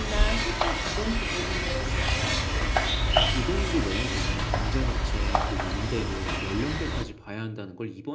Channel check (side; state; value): both; identical; correlation 1.00